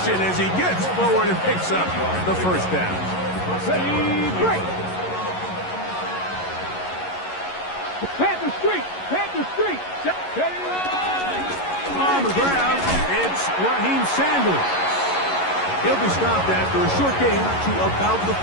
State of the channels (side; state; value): right; late; 11 ms